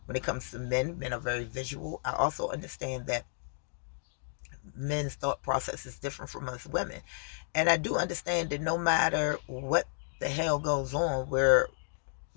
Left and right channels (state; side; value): silent; right; digital silence